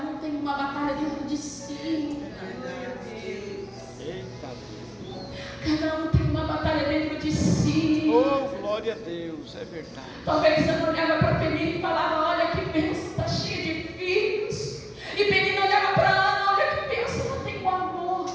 um tem uma batalha dentro de si. Cada um tem uma batalha dentro de si. Oh, glória a Deus, é verdade. Talvez Ana olhava para Penina e falava: olha que bênção, está cheia de filhos. E Penina olhava para Ana: olha que bênção, não tenho amor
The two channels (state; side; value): identical; both; correlation 1.00